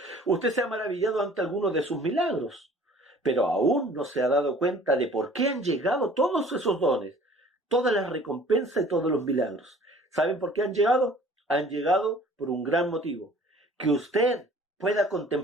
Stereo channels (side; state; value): both; normal; correlation 0.51